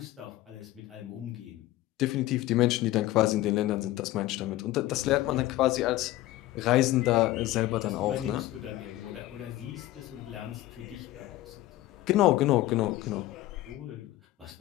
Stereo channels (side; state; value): right; quieter; 16.1 dB